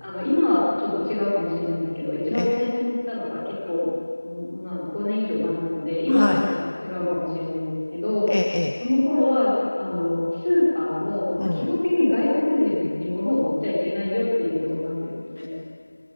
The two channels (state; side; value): inverted; both; correlation -1.00